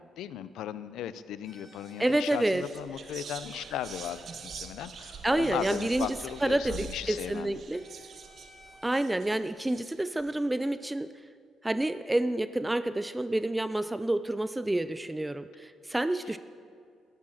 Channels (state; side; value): normal; both; correlation 0.92